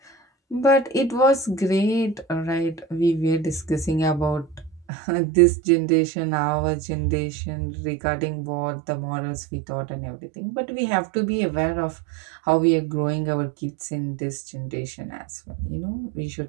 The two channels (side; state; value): left; drops out; at 4.9 s